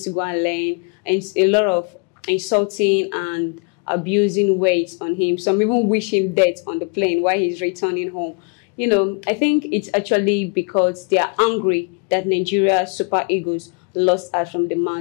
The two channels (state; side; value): quieter; right; 37.1 dB